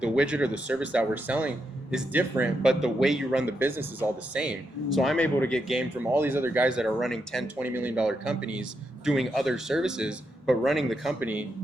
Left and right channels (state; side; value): normal; both; correlation 0.83